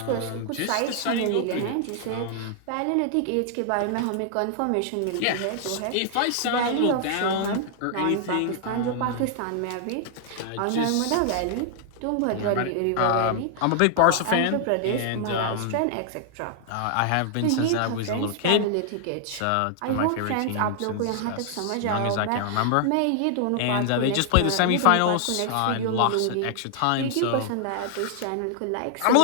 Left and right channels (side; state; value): both; different; correlation 0.00